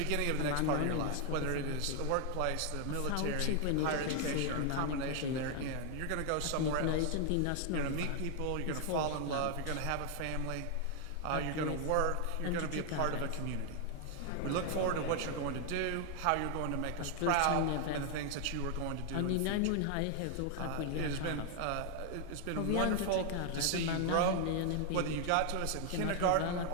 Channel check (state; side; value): different; both; correlation 0.00